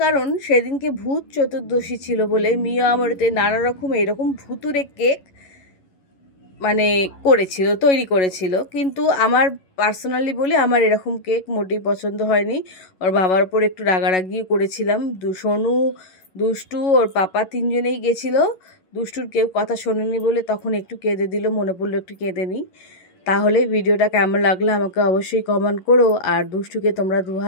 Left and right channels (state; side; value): late; right; 11 ms